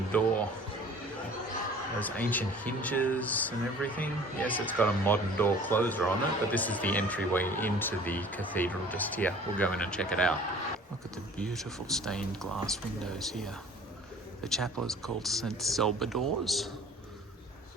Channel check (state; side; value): normal; both; correlation 0.48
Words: door. Those ancient hinges and everything. Yes, it's got a modern door closer on it, but this is the entryway into the cathedral just here. We'll go in and check it out. Look at the beautiful stained glass windows here. The chapel is called St. Salvador's